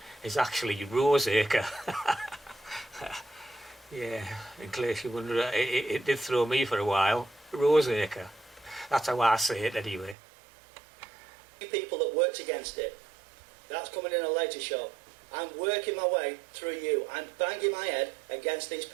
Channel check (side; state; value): left; drops out; at 10.2 s